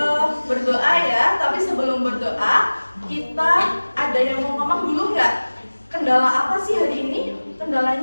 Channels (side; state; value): both; inverted; correlation -1.00